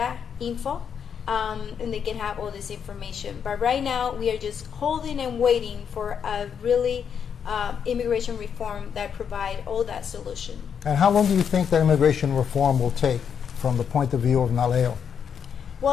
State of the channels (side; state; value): right; quieter; 7.5 dB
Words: and they can have all this information. But right now we are just holding and waiting for a really immigration reform that provide all that solution. And how long do you think that immigration reform will take from the point of view of NALEO?